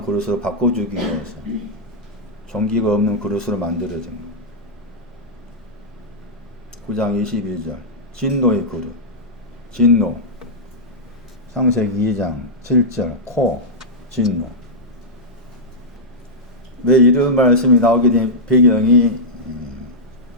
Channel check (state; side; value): normal; both; correlation -0.08